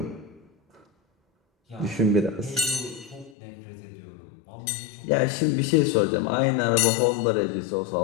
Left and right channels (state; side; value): drops out; right; at 3.4 s